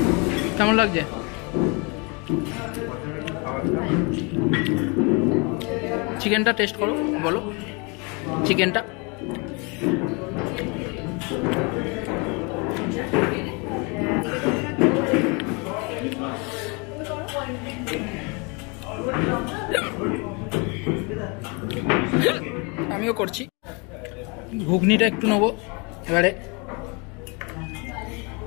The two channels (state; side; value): quieter; right; 31.1 dB